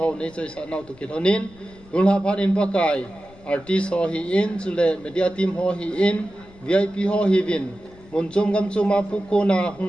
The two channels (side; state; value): left; noise; rumble, 24 dB below the sound